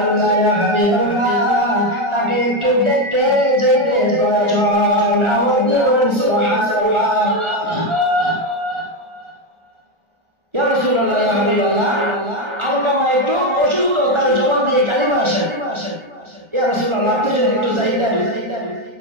ইয়া হাবিবাল্লাহ, তাকে একটু দেখতে যেতে প্রয়োজন। আওয়াজ দিয়ে বলেন সুবহানাল্লাহ। ইয়া রাসূলুল্লাহ, ইয়া হাবিবাল্লাহ, আলকামা একটু অসুস্থ, তার জবান দিয়ে কালিমা আসে। ইয়া রাসূলুল্লাহ, আপনি যদি একটু চাইতেন।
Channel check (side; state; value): left; late; 1.4 ms